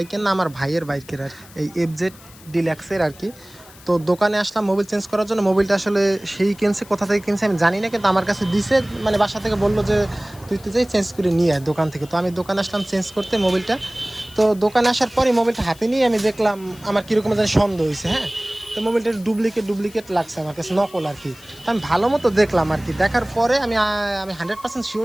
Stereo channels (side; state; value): left; noise; hiss, 22 dB below the sound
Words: না, আমার ভাইয়ের বাইকের আর এই এফজেড ডিলাক্সের আর কি। তো দোকানে আসলাম মোবিল চেঞ্জ করার জন্য। মোবিলটা আসলে সেই কিনছে, কোথা থেকে কিনছে আমি জানি না, কিন্তু আমার কাছে দিছে, মানে বাসা থেকে বললো যে তুই যাই চেঞ্জ করে নিয়ে আয় দোকান থেকে। তো আমি দোকানে আসলাম চেঞ্জ করতে মোবিলটা। তো দোকানে আসার পরে মোবিলটা হাতে নিয়ে আমি দেখলাম আমার কীরকম যেন সন্দেহ হয়েছে। হ্যাঁ, তো মোবাইলটার ডুপ্লিকেট লাগছে আমার কাছে, নকল আর কি। তো আমি ভালো মতো দেখলাম আর কি, দেখার পরে আমি 100% শিওর